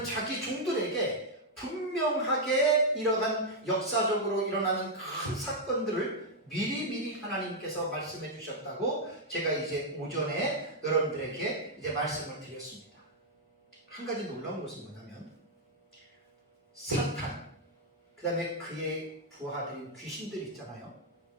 자기 종들에게 분명하게 이러한 역사적으로 일어나는 큰 사건들을 미리 하나님께서 말씀해 주셨다고 제가 이제 오전에 여러분들에게 이제 말씀을 드렸습니다. 한 가지 놀라운 것은 뭐냐면 사탄, 그 다음에 그의 부하들인 귀신들 있잖아요.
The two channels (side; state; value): both; normal; correlation -0.02